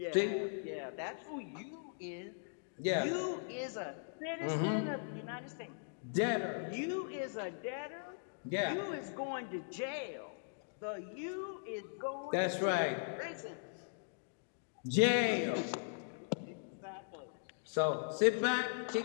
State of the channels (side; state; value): right; silent; digital silence